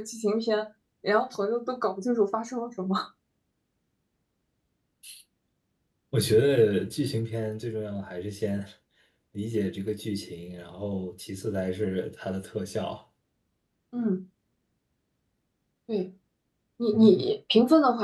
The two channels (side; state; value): both; identical; correlation 1.00